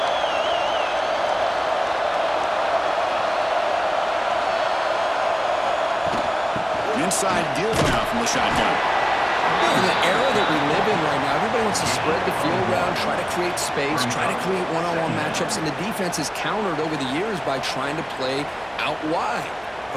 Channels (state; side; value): identical; both; correlation 1.00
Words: Inside deal now from the shotgun. In the era that we live in right now, everybody wants to spread the field around, try to create space, try to create one-on-one matchups, and the defense has countered over the years by trying to play out wide.